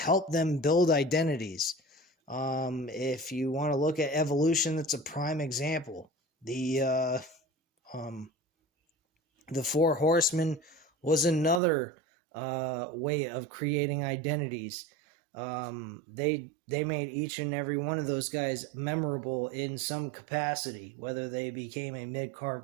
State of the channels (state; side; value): drops out; left; at 11.6 s